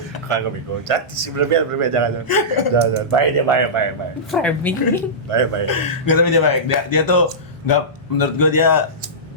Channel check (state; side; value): normal; both; correlation -0.17